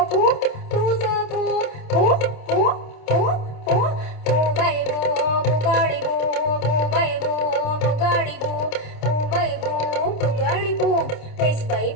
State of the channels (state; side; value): late; right; 27 ms